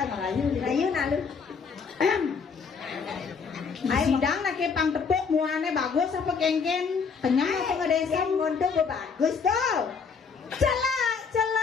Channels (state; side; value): quieter; right; 5.6 dB